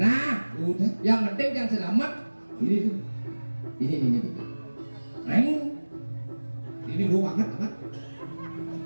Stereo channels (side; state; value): both; inverted; correlation -1.00